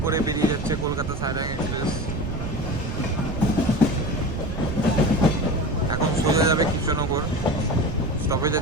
করে বেরিয়ে যাচ্ছে কলকাতা সাইরাং এক্সপ্রেস। এখন সোজা যাবে কৃষ্ণনগর, স্টপেজ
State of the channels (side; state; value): right; noise; rumble, 6 dB below the sound